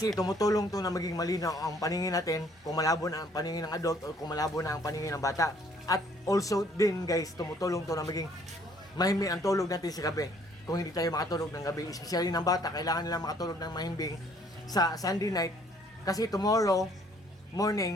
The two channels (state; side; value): normal; both; correlation 0.62